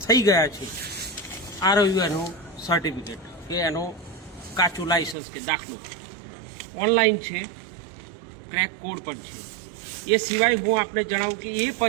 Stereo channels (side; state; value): left; drops out; at 5.2 s